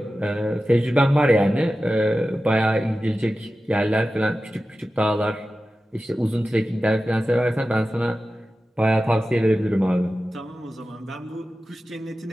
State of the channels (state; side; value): normal; both; correlation 0.94